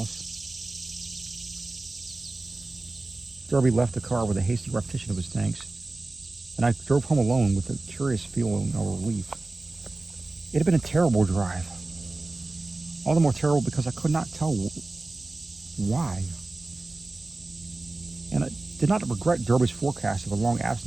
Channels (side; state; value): left; quieter; 3.1 dB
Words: Derby left the car with a hasty repetition of his thanks, and I drove home alone with a curious feeling of relief. It had been a terrible drive. All the more terrible because I could not tell why. And I did not regret Derby's forecast of a long